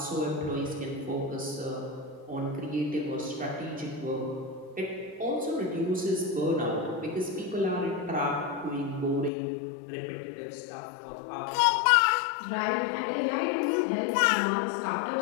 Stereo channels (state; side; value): drops out; right; at 9.3 s